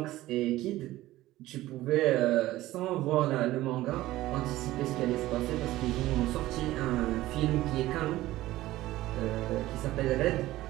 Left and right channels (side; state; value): left; quieter; 16.3 dB